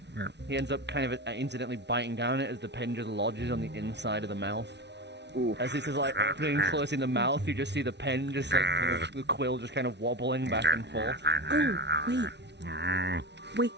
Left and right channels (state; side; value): late; left; 0.50 ms